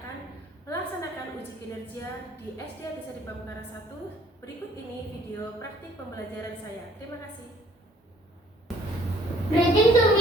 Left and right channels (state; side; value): normal; both; correlation 0.59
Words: melaksanakan uji kinerja di SD Atisa di Pamekaran 1. Berikut ini video praktik pembelajaran saya. Terima kasih. Greeting to